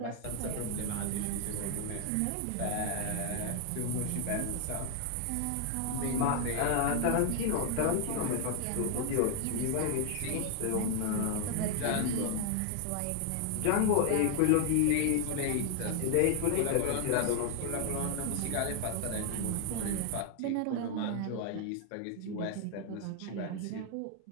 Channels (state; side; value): different; both; correlation 0.00